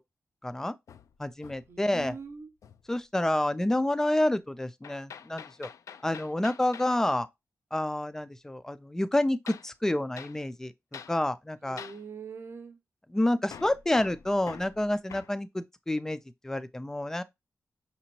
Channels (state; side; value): normal; both; correlation 0.98